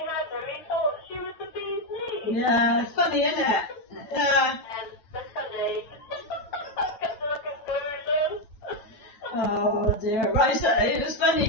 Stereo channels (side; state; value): right; late; 9.0 ms